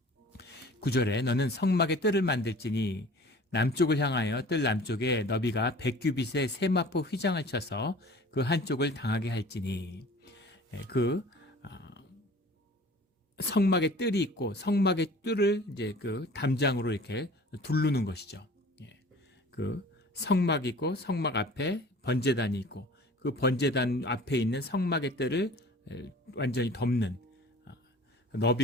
9절에 너는 성막의 뜰을 만들지니 남쪽을 향하여 뜰 남쪽에 너비가 100규빗의 세마포 휘장을 쳐서 그 한쪽을 당하게 할지니, 그 성막의 뜰이 있고 성막의 뜰을 이제 그 담장으로 이렇게 두르는 것이죠. 그 성막이 있고 성막 앞에 번제단이 있고 그 번제단 앞에 있는 성막의 뜰을 완전히 덮는,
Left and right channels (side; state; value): both; normal; correlation 0.45